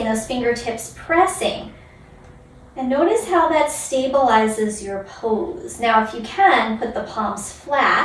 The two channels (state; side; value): identical; both; correlation 1.00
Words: those fingertips pressing. And notice how that stabilizes your pose. Now if you can, put the palms